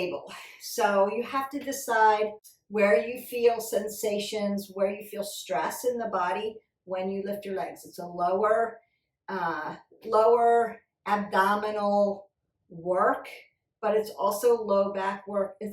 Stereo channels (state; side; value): identical; both; correlation 1.00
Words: So you have to decide where you feel sensations, where you feel stress in the body when you lift your legs. It's a lower abdominal work, but it's also low back work.